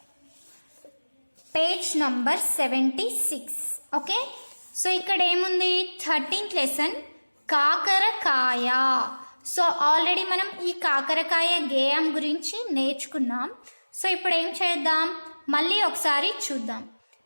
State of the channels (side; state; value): both; inverted; correlation -1.00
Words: page number 76. Okay, so ఇక్కడ ఏముంది, 13th లెసన్ కాకరకాయ. సో ఆల్రెడీ మనం ఈ కాకరకాయ గేయం గురించి నేర్చుకున్నాం. సో ఇప్పుడు ఏం చేద్దాం, మళ్ళీ ఒకసారి చూద్దాం.